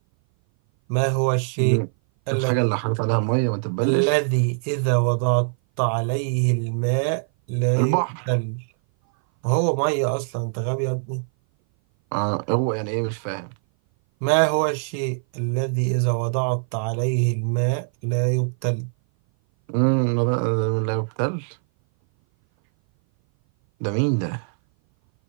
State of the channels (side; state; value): left; silent; 58 dB below the other